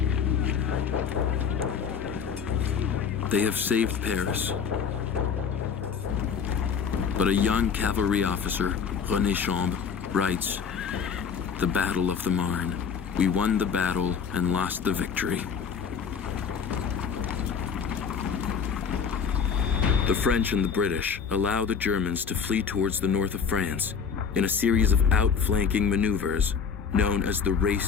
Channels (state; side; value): quieter; right; 6.5 dB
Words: They have saved Paris. But a young cavalry officer, René Chambre, writes, "The Battle of the Marne. We won the battle and lost the victory." The French and the British allow the Germans to flee towards the north of France in a series of outflanking maneuvers known as the